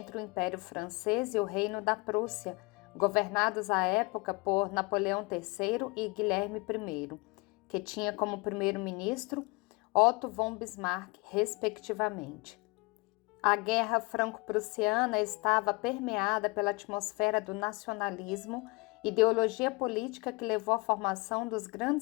o Império Francês e o Reino da Prússia, governados à época por Napoleão III e Guilherme I, que tinha como primeiro-ministro Otto von Bismarck, respectivamente. A Guerra Franco-Prussiana estava permeada pela atmosfera do nacionalismo, ideologia política que levou à formação dos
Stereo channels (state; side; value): quieter; right; 27.2 dB